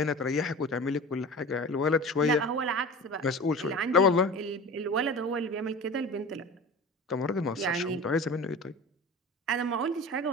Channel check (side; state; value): both; normal; correlation 0.35